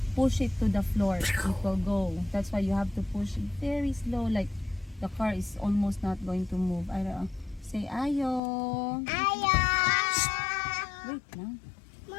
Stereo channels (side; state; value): right; drops out; at 8.4 s